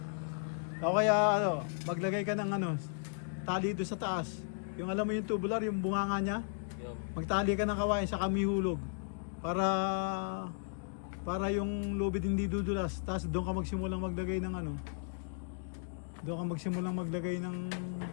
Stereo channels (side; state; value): right; silent; digital silence